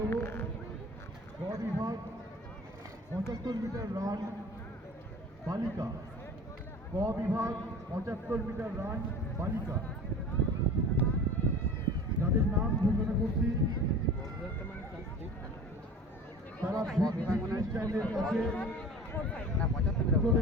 গ বিভাগ 75 মিটার রান বালিকা। ক বিভাগ 75 মিটার রান বালিকা। যাদের নাম ঘোষণা করছি তারা চ্যানেলের কাছে চলে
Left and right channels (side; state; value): both; normal; correlation 0.40